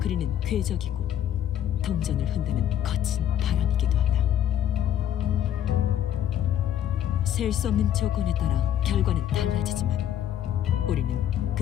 궤적이고 동전을 흔드는 거친 바람이기도 하다. 셀 수 없는 조건에 따라 결과는 달라지지만 우리는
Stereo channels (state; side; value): quieter; right; 10.5 dB